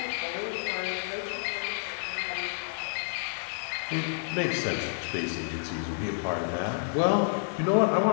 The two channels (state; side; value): silent; right; digital silence